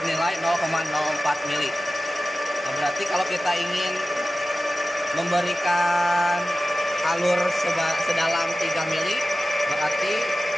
0,04 mili. Nah, berarti kalau kita ingin memberikan alur sedalam 3 mili, berarti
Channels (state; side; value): normal; both; correlation 0.94